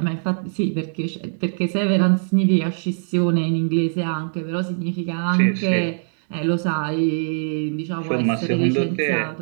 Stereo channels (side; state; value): left; silent; digital silence